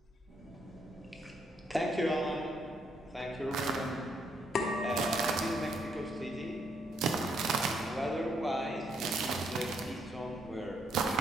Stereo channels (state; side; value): normal; both; correlation 0.73